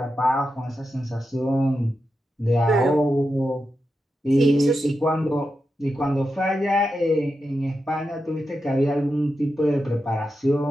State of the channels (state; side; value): normal; both; correlation 0.88